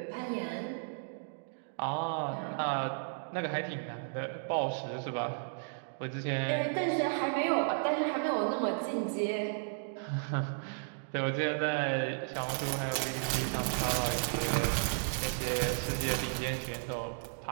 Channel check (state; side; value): silent; left; digital silence